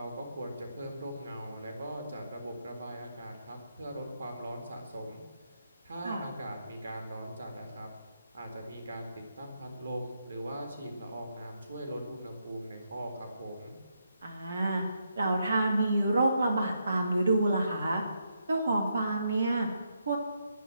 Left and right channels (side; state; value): both; inverted; correlation -0.80